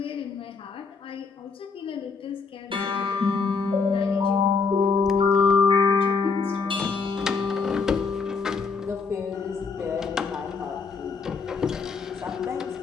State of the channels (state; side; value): quieter; right; 4.9 dB